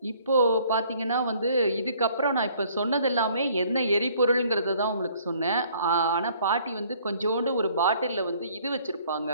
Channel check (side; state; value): both; inverted; correlation -0.59